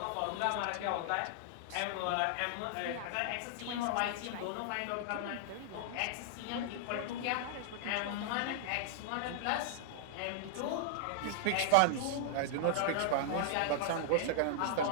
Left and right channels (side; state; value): both; different; correlation -0.01